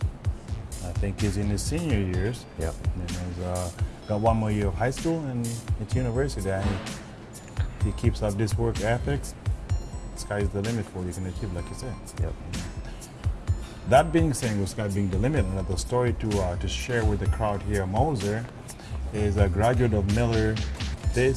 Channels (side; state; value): both; identical; correlation 1.00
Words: I think he's in his senior years. Yeah. And he's got one more year of high school and it's university. And he keeps up this work ethics. Sky's the limit for what you can achieve, like you said. Yep. That being said, with sky being the limit, another story to share with the crowd here, Moser is a graduate of Miller.